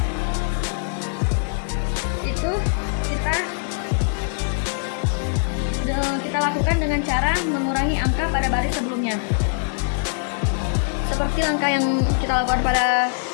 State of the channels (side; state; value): right; silent; digital silence